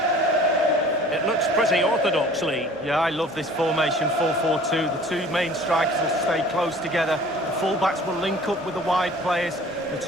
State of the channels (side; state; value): both; normal; correlation 0.48